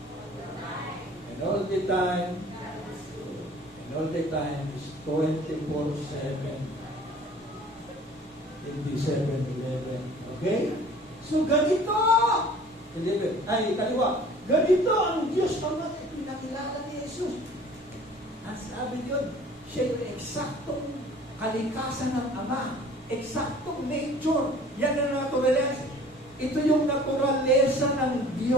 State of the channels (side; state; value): both; normal; correlation 0.49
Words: And all the time. And all the time is 24/7. Hindi 7-11. Okay? So ganito! 11. Ay, kaliwa. Ganito ang Diyos ang pinakilala ni Jesus. Ang sabi yun, siya yung eksaktong kalikasan ng Ama. Eksaktong nature. Yan ang naturaleza. Ito yung naturaleza ng